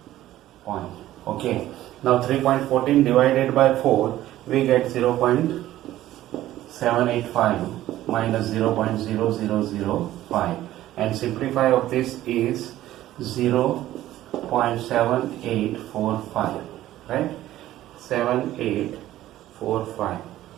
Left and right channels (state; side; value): quieter; left; 14.2 dB